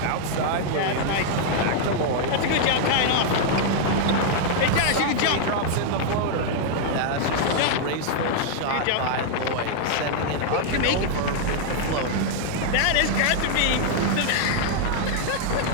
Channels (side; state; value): both; different; correlation -0.01